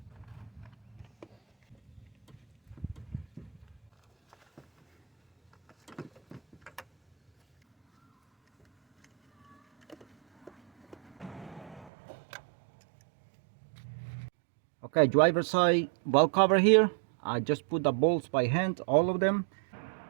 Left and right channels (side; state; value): left; drops out; at 11.9 s